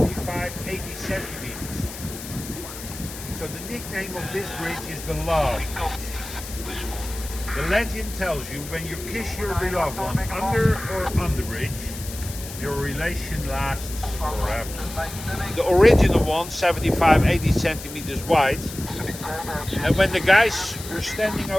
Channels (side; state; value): left; noise; hiss, 12 dB below the sound